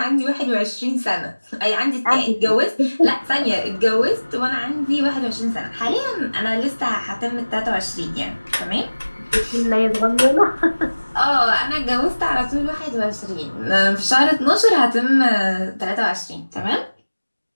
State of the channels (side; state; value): both; inverted; correlation -1.00